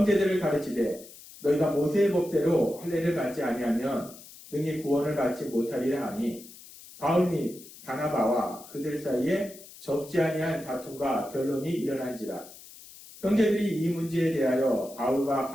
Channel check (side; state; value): left; noise; hiss, 18 dB below the sound